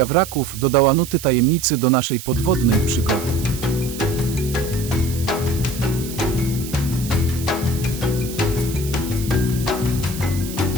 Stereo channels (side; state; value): right; noise; hiss, 12 dB below the sound